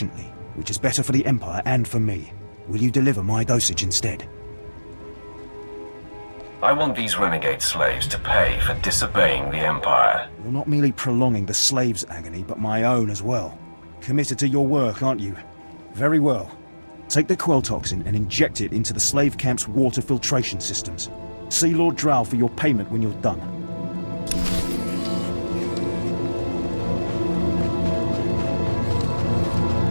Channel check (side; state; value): both; inverted; correlation -1.00